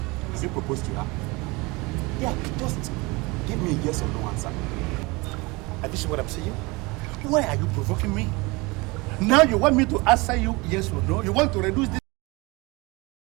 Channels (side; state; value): left; quieter; 25.0 dB